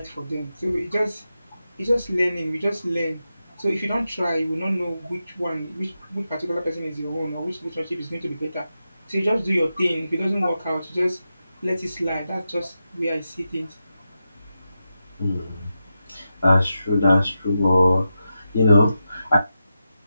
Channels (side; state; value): both; inverted; correlation -0.89